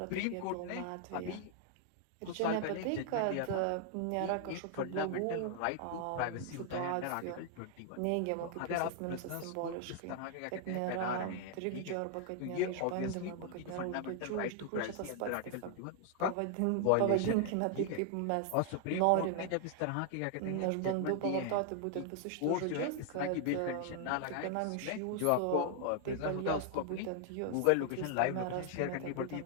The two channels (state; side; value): different; both; correlation 0.00